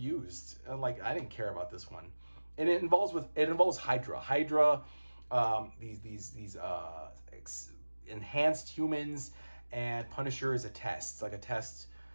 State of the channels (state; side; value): inverted; both; correlation -1.00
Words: Like, I didn't care about this one. And it involves Hydra. These enhanced humans, and Punisher is a test. It's like a test.